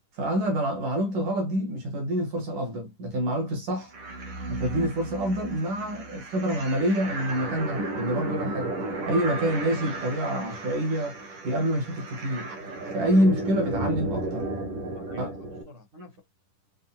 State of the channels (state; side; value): late; left; 10 ms